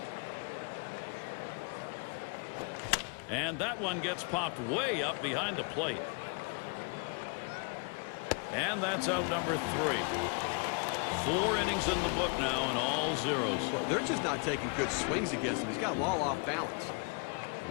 And that one gets popped way up behind the plate. And that's out number 3. 4 innings in the book now and all zeros. Well, they're just not taking good swings against him. He's got them all off balance.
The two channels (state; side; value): quieter; right; 36.0 dB